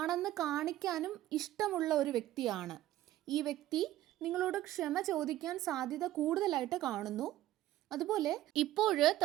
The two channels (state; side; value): quieter; left; 14.6 dB